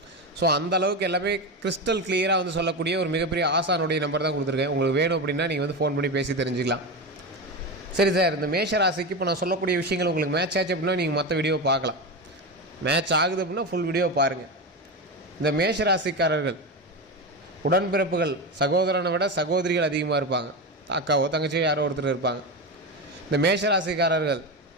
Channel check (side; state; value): both; normal; correlation 0.18